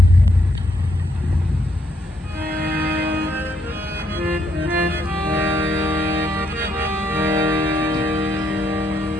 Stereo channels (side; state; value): both; normal; correlation 0.74